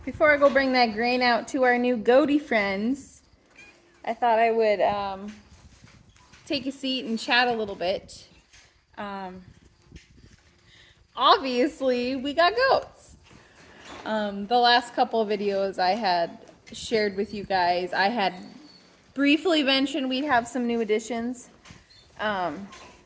before I go bring that grain out to our new goaty friends, I thought I would take a seat and chat a little bit. Obviously, we got goats. The last couple of videos I had shared with you guys, I had briefly mentioned we'd have some new additions.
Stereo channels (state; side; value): identical; both; correlation 1.00